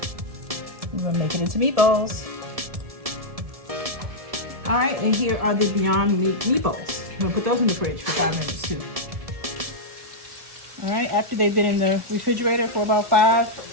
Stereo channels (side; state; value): left; late; 1.7 ms